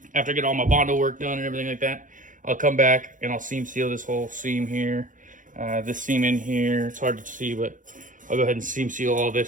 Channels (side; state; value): left; late; 0.38 ms